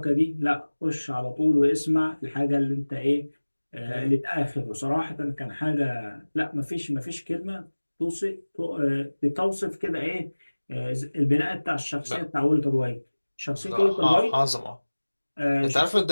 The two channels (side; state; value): both; inverted; correlation -1.00